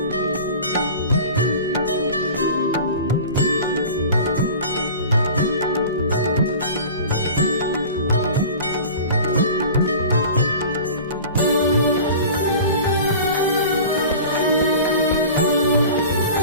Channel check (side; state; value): both; inverted; correlation -0.38